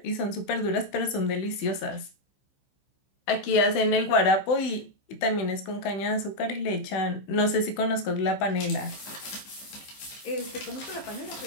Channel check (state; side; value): late; right; 16 ms